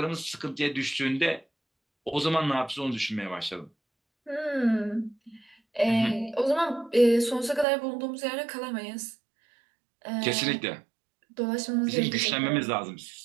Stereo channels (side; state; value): left; drops out; at 7.7 s